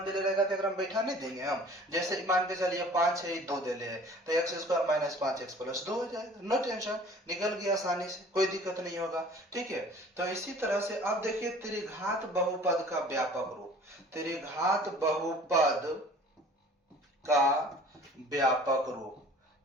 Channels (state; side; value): normal; both; correlation 0.48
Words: दे रहेगा, तो अगर हम बैठा नहीं देंगे हम, जैसे मान के चलिए 5 है 2 दे ले, तो X square minus 5x plus 2 हो जाएगा। नो टेंशन, निकल गया आसानी से, कोई दिक्कत नहीं होगा। ठीक है, तो इसी तरह से अब देखिए त्रिघात बहुपद का व्यापक रूप, त्रिघात बहुपद का व्यापक रूप,